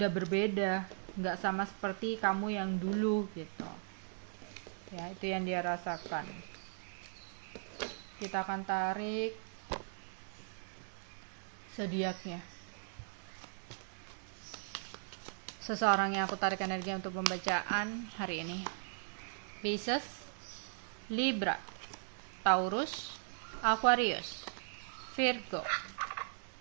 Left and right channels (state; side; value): silent; left; digital silence